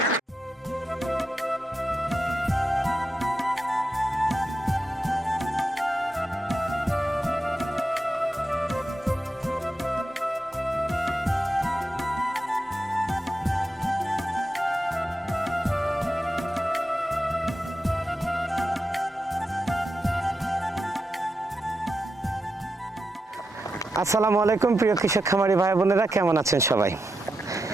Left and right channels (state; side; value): normal; both; correlation 0.88